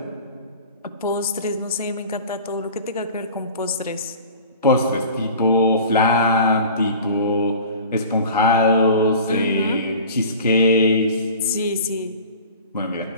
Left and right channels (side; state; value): both; inverted; correlation -0.41